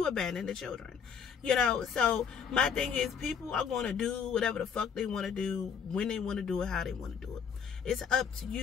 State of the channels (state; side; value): quieter; right; 7.0 dB